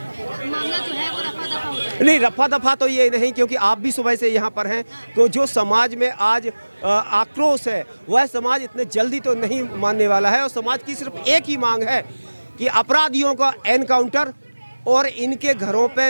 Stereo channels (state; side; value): inverted; both; correlation -1.00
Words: मामला जो है वो रफा दफा हो जाएगा? नहीं, रफा दफा तो ये नहीं, क्योंकि आप भी सुबह से यहाँ पर हैं, तो जो समाज में आज आक्रोश है वह समाज इतने जल्दी तो नहीं मानने वाला है, और समाज की सिर्फ एक ही मांग है कि अपराधियों का एनकाउंटर और इनके घरों